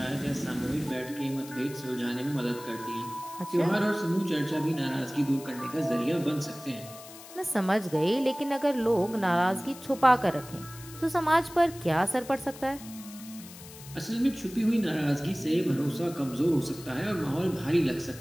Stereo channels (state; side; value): noise; left; hiss, 17 dB below the sound